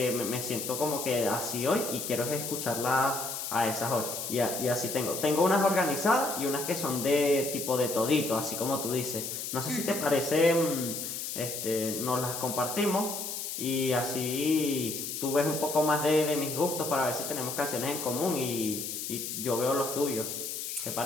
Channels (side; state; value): left; noise; hiss, 5 dB below the sound